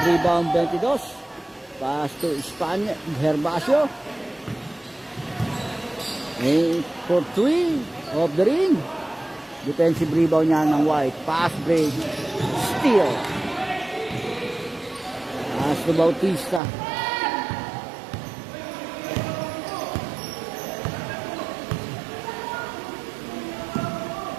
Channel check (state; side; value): drops out; left; at 16.6 s